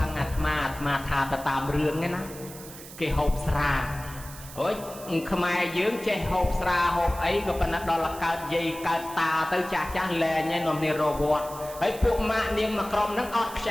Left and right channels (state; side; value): noise; right; hiss, 15 dB below the sound